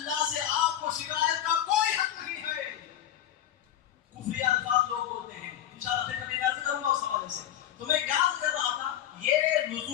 سے آپ کو شکایت کا کوئی حق نہیں ہے۔ کفری الفاظ لوگ بولتے ہیں، انشاءاللہ پھر کبھی عرض کروں گا اس حوالے سے۔ تو میں کیا عرض کر رہا تھا، یہ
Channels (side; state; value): right; quieter; 11.2 dB